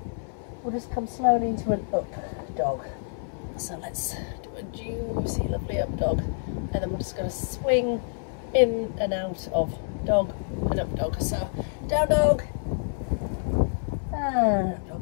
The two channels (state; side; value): silent; right; 60 dB below the other